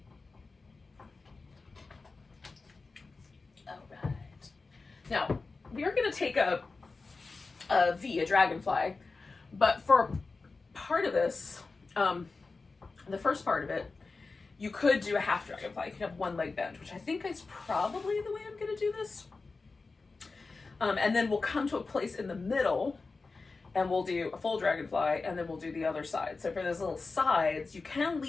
Now, we are going to take a dragonfly, but for part of this, the first part of it, you could do a half dragonfly. You could have one leg bend, which I think is probably the way I'm going to do this. And then we'll come to a place in the middle, and we'll do a full dragonfly, and then we'll do the other side. So for those little sides, you can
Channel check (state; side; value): quieter; right; 4.0 dB